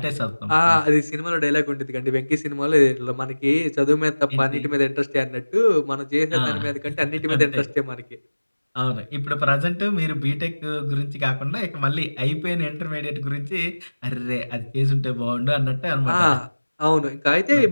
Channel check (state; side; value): inverted; both; correlation -1.00